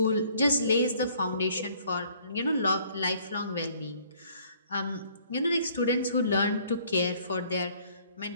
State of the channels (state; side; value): inverted; both; correlation -0.60